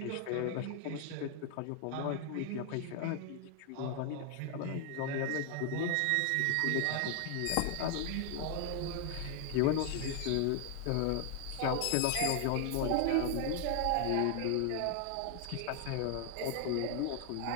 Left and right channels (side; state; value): both; different; correlation 0.00